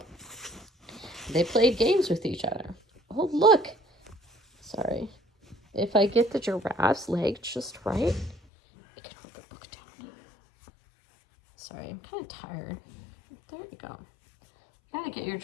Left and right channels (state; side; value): drops out; right; at 8.4 s